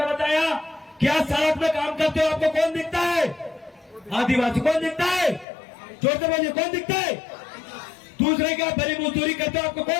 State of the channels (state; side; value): drops out; right; at 5.5 s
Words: बताया? क्या सड़क में काम करते हो आपको कौन दिखता है? आदिवासी। कौन दिखता है? जोर से बोलिए, कौन दिखता है? दूसरे क्या बड़ी मजदूरी करते हो आपको